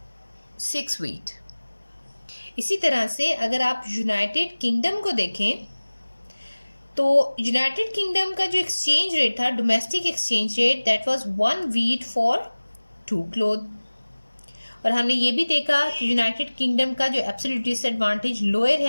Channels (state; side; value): inverted; both; correlation -1.00